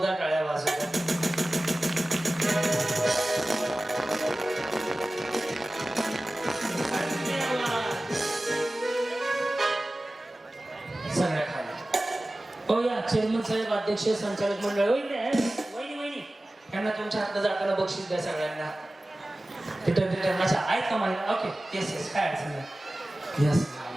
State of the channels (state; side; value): normal; both; correlation 0.97